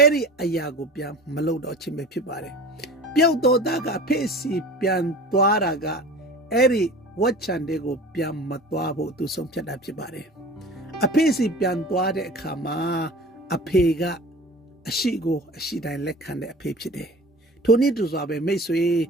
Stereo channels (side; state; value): both; normal; correlation 0.39